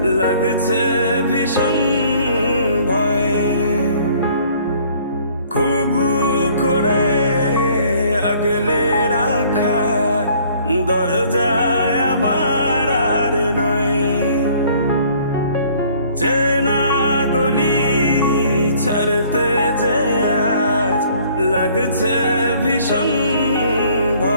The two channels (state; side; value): inverted; both; correlation -0.57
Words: লাগছে ভীষণ ভয়। খুব করে আগলে রাখা দরজায় আমার আর নয়, চেনা গলি ছাড়তে যে আজ লাগছে ভীষণ